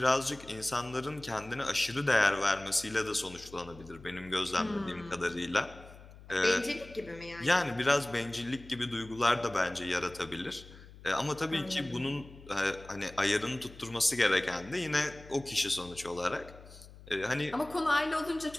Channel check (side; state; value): left; noise; hum, 19 dB below the sound